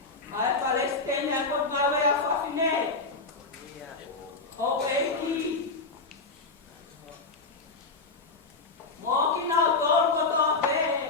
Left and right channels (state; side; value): quieter; right; 3.8 dB